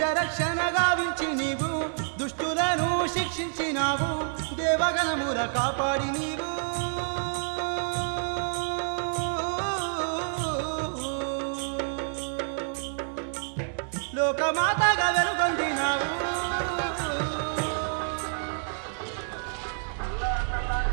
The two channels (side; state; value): left; silent; digital silence